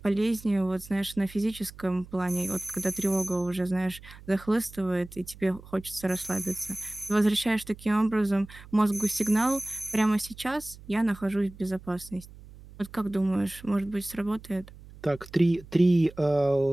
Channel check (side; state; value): right; noise; hum, 19 dB below the sound